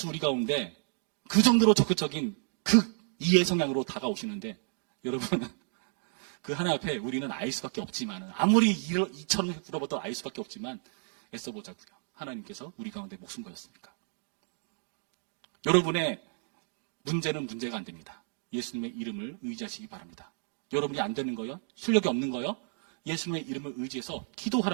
우리 가운데 그 정도로 적극적인 이해 성향으로 다가오시는데 여러분 그 하나님 앞에 우리는 알 수밖에 없지만 아무리 이처럼 물어봐도 알 수밖에 없지만 애써보자고요. 하나님께서 우리 가운데 목숨 거셨으니까. 여러분의 문제는 문제가 안 됩니다. 예수님의 이름을 의지하시기 바랍니다. 여러분이 안 되는 거요? 실력이 없는 거요? 예수님의 이름을 의지해서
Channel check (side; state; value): left; silent; 57 dB below the other